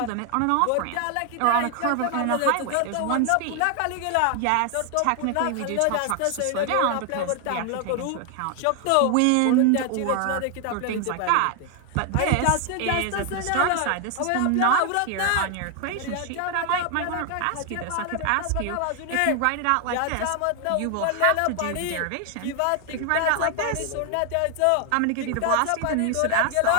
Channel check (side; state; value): both; different; correlation 0.00